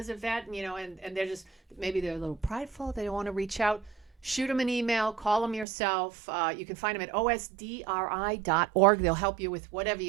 a vet, and they're just, maybe they're a little prideful, they don't want to reach out, shoot them an email, call them yourself. You can find them at osdri.org. They'll help you with whatever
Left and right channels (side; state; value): left; drops out; at 5.7 s